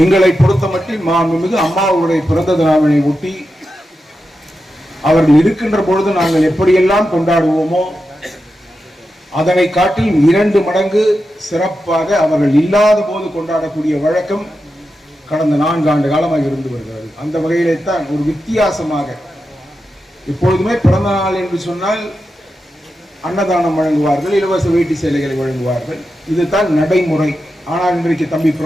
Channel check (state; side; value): normal; both; correlation 0.89